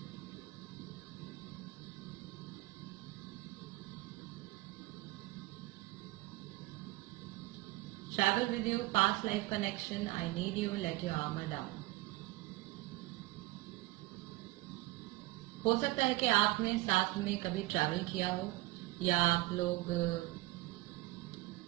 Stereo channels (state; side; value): quieter; left; 19.6 dB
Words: Travel with you, past life connection, I need you, let your armour down. हो सकता है कि आपने साथ में कभी ट्रैवल किया हो, या आप लोग